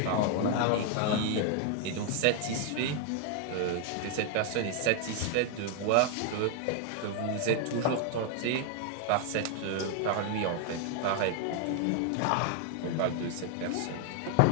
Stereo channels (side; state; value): both; different; correlation 0.00